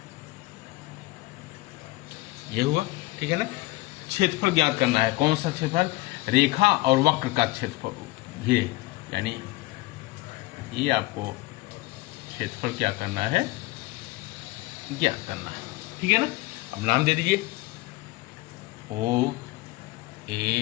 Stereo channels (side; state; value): right; quieter; 20.2 dB